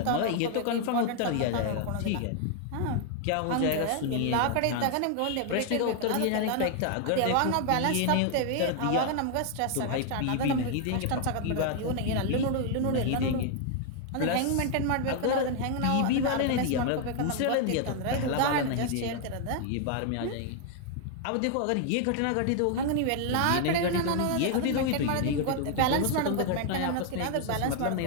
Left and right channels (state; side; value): different; both; correlation 0.00